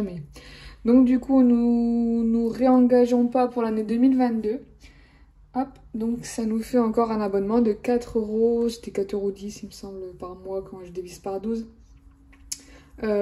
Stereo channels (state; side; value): identical; both; correlation 1.00